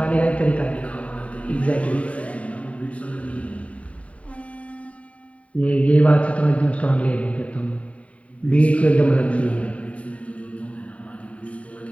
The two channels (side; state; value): right; late; 0.066 ms